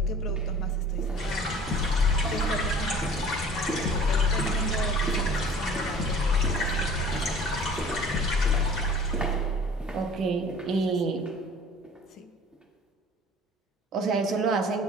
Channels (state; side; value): normal; both; correlation 0.47